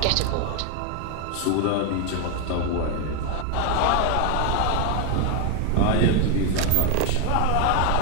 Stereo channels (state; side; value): different; both; correlation 0.01